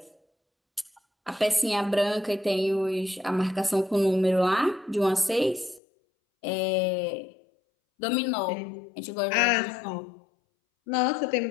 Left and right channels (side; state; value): right; drops out; at 5.8 s